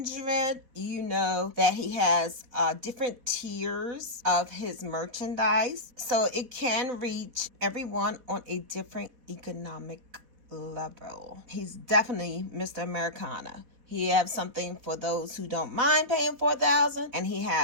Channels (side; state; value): left; late; 4.1 ms